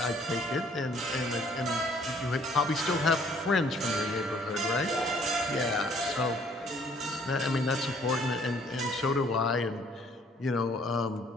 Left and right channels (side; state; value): both; normal; correlation 0.61